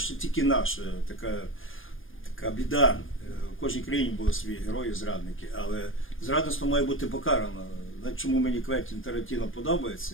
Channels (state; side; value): late; right; 0.58 ms